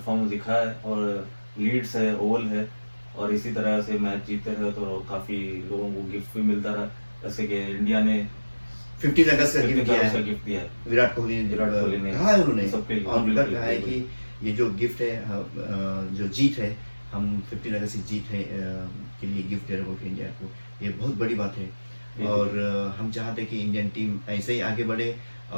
दिखा है और लीड्स है, ओवल है, और इसी तरह से मैच जीतते रहे तो काफ़ी लोगों को गिफ्ट भी मिलता रहा, जैसे कि इंडिया ने 15 अगस्त का गिफ्ट दिया है गिफ्ट दिया है। विराट कोहली ने कहा है उन्होंने सबके लिए, और बिल्कुल, कहा है कि ये जो गिफ्ट है जो जीत है, हम 15 अगस्त की जीत है के लिए गिफ्ट दे रहे हो इंडिया को, ये बहुत बड़ी बात है। और हम चाहते हैं कि इंडियन टीम ऐसे ही आगे बढ़े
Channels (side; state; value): both; inverted; correlation -1.00